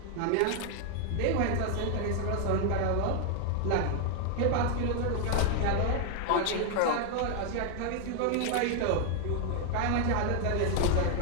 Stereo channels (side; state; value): both; different; correlation 0.00